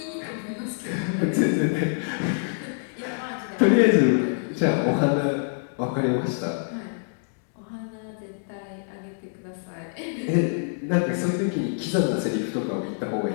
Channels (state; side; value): silent; right; digital silence